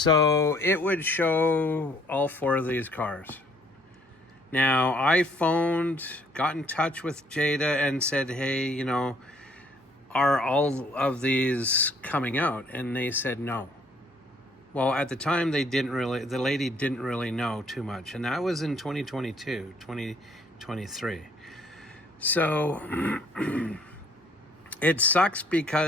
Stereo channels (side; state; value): both; normal; correlation 0.62